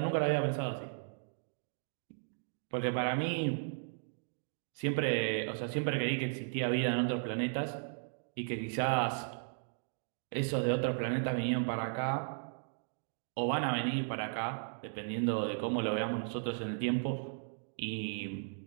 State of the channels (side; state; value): left; silent; digital silence